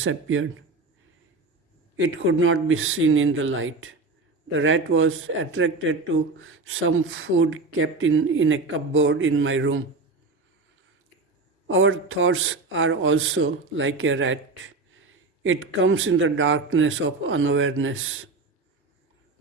It could not be seen in the light. The rat was attracted to some food kept in a cupboard in my room. Our thoughts are also like a rat. It comes in the darkness of unawareness.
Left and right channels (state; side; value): quieter; left; 3.7 dB